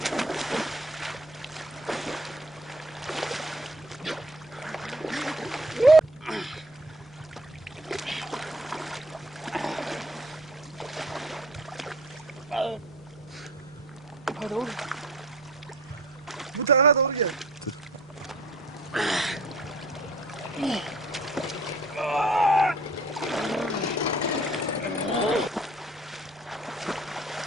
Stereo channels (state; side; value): normal; both; correlation 0.51